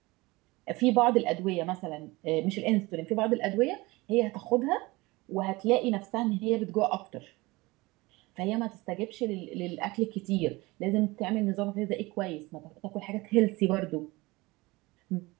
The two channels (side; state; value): left; quieter; 22.2 dB